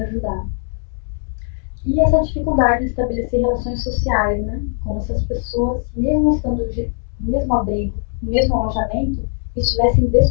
E essa dificuldade de estabelecer relações sociais, né? Como se as pessoas, mesmo estando no mesmo abrigo, no mesmo alojamento, estivessem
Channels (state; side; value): silent; right; 55 dB below the other